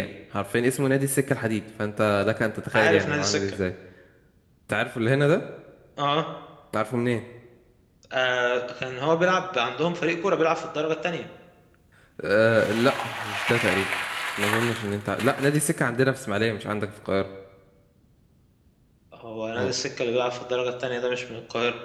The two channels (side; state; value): both; identical; correlation 1.00